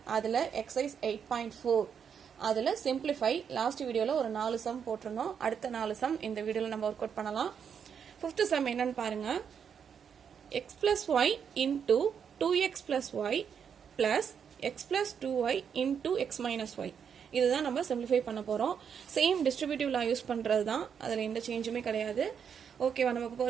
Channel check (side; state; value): left; quieter; 7.4 dB